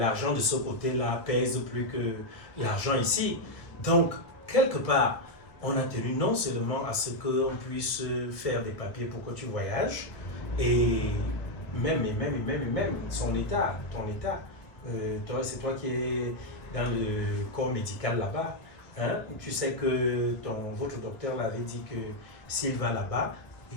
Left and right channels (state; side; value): late; right; 1.2 ms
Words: de ce côté-là pèse plus que l'argent ici. Donc, quelque part, on a tenu non seulement à ce qu'on puisse faire des papiers pour que tu voyages, et même son état, ton état. C'est toi qui es dans le corps médical là-bas. Hein? Tu sais que votre docteur l'avait dit que s'il va là-bas,